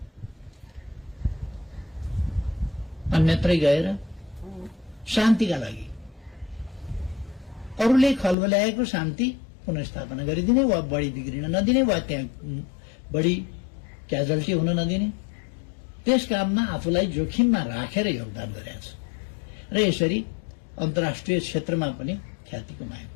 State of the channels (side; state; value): right; drops out; at 8.3 s